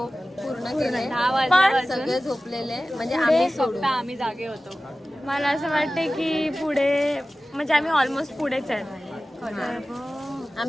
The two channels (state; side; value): normal; both; correlation 0.96